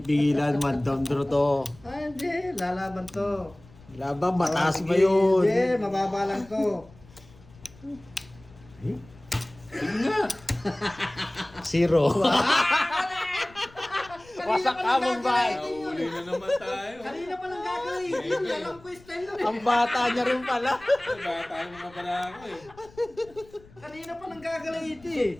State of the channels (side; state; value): left; noise; rumble, 24 dB below the sound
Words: one down draw to. Ay, hindi. Lalaban to. Laban, mataas ba Sige, yun? Hindi, mababa lang to. Sige nga. 0. Wasak ka mong bay. Nahuli na naman tayo. Kanina pa lang gagawin yun, alam ko yung style nun eh. Ang bata niya rin pala. Bata yung mga pala ako eh. Kanina pa nang gagalaiti eh.